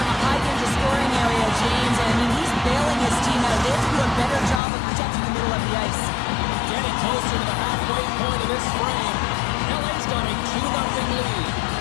a high-danger scoring area, James. And I mean, he's bailing his team out. They have to do a better job of protecting the middle of the ice. Getting closer to the halfway point of this frame. LA's got a 2-0 lead.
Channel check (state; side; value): drops out; right; at 4.6 s